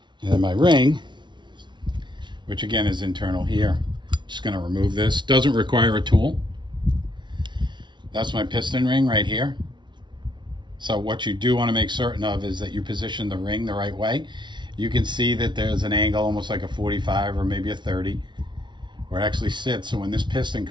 And then my ring, which again is internal here. Just going to remove this. Doesn't require a tool. That's my piston ring right here. So what you do want to make certain of is that you position the ring the right way. You can see that there's an angle almost like a 45 or maybe a 30 where it actually sits. So when this piston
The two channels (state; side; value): late; left; 0.23 ms